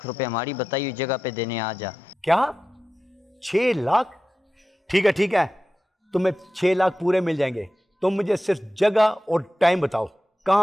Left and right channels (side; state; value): both; normal; correlation 0.92